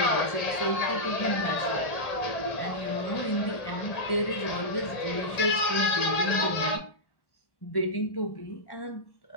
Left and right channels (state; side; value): late; right; 1.1 ms